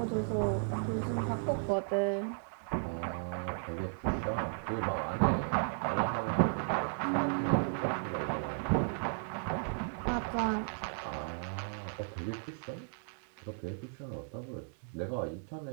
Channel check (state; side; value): silent; left; 54 dB below the other